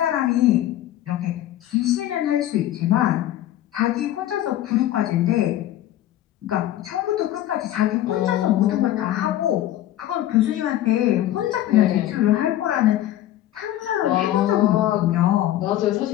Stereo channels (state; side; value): quieter; right; 13.3 dB